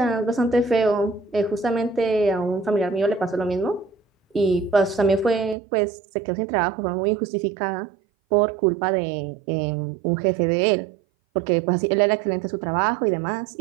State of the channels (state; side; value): drops out; left; at 5.6 s